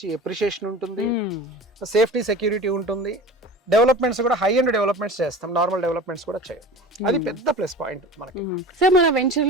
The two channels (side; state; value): both; normal; correlation 0.36